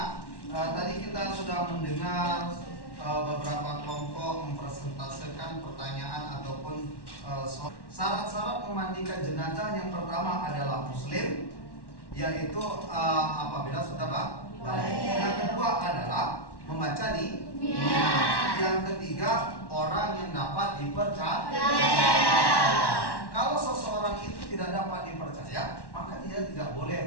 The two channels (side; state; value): right; late; 1.1 ms